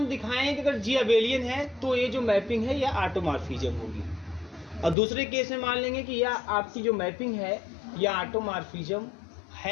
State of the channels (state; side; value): drops out; right; at 5.0 s